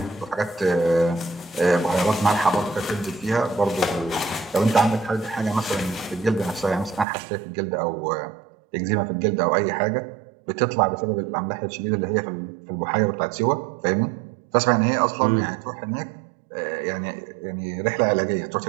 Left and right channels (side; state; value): left; drops out; at 7.1 s